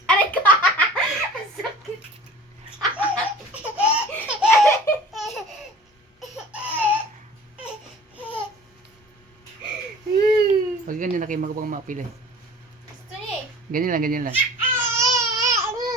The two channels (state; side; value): normal; both; correlation 0.44